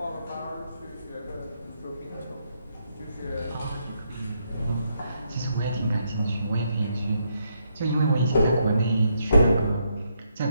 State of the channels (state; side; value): inverted; both; correlation -0.77